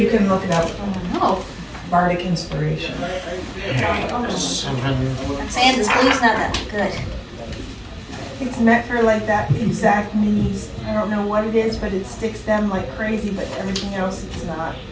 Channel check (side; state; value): both; identical; correlation 1.00